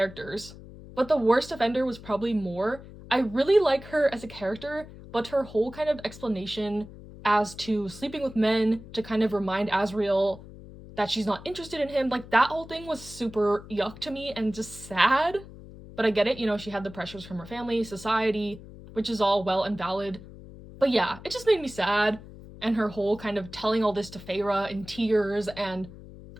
But the worst offender was probably Mor. I really like her as a character, but her whole kind of explanation as to sleeping with men to kind of remind Asriel that she's not interested in him, like, that whole thing was super yuck to me and just sad. But I get it, she had the pressures from her family, society, which is all well and valid. But yeah, it just made me sad, and her whole kind of telling all this to Feyre in tears, and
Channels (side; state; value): left; noise; hum, 16 dB below the sound